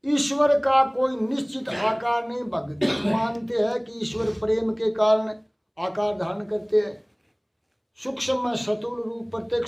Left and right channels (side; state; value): both; identical; correlation 1.00